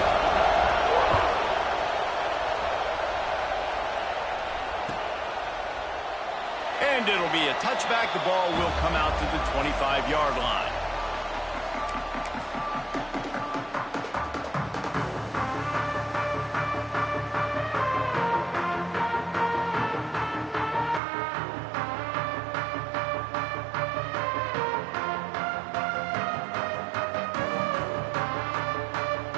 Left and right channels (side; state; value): left; drops out; at 21.0 s